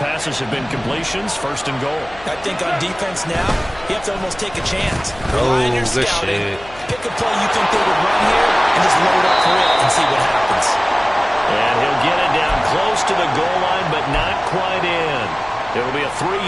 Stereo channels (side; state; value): left; noise; hum, 21 dB below the sound